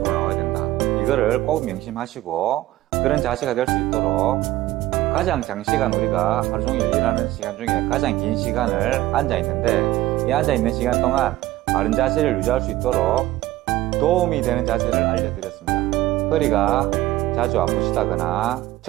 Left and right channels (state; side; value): quieter; left; 15.9 dB